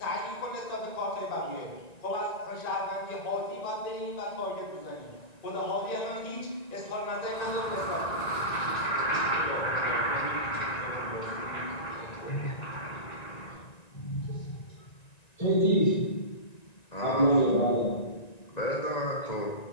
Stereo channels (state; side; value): late; right; 1.9 ms